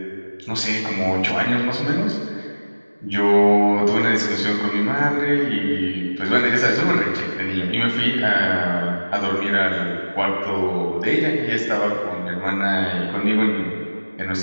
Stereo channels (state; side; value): inverted; both; correlation -1.00